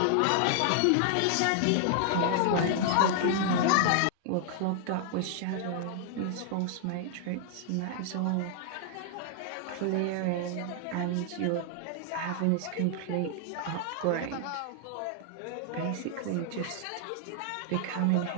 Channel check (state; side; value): different; both; correlation 0.00